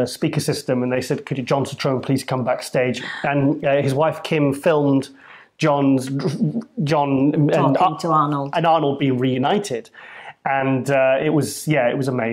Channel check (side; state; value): both; identical; correlation 1.00